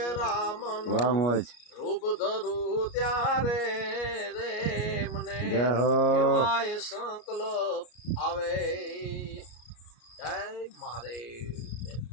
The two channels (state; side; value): late; right; 33 ms